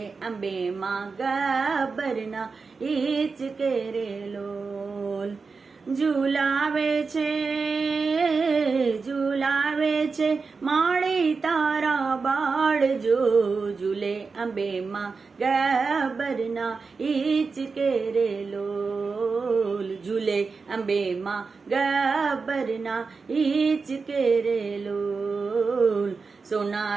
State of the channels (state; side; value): quieter; left; 4.7 dB